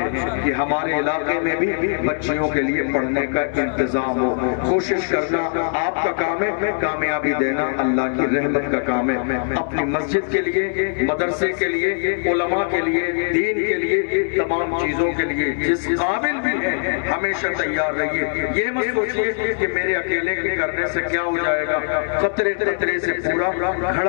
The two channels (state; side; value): silent; right; digital silence